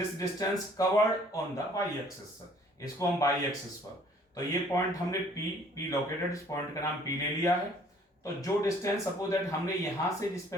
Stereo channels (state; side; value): normal; both; correlation 0.57